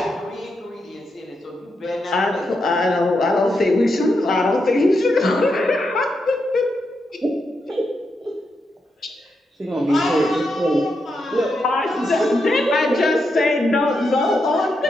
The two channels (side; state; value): both; normal; correlation 0.84